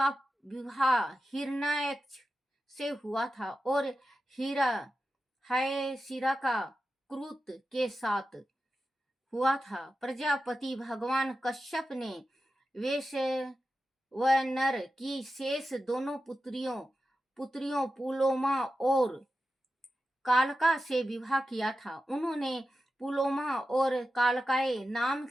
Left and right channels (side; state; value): both; normal; correlation 0.92